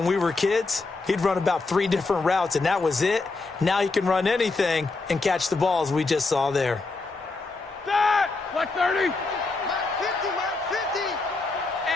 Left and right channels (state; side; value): quieter; right; 3.7 dB